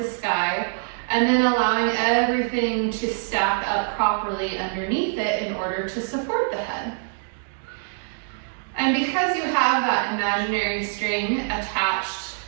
sky, and then allowing everything to stack up properly underneath it in order to support the head. And because you have that imaginary string attached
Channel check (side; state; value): left; silent; 61 dB below the other